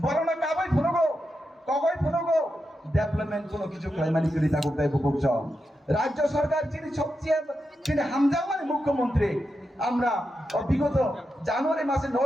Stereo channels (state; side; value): normal; both; correlation 0.87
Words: বড় না কাবাই ফুনগো কগই ফুনগো ডেভেলপমেন্ট কোনো কিছু ক্লাইমানি করি তা করতে বুকছ রাজ্য সরকার যিনি হামজামানি মুখ্যমন্ত্রী আমরা বিগত জানুয়ারি মাসের